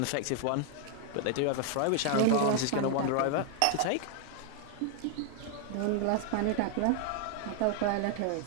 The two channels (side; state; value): both; different; correlation 0.00